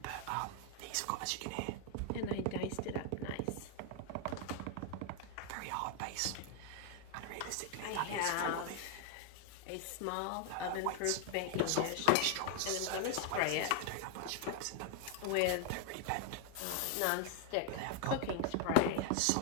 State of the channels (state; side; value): different; both; correlation 0.00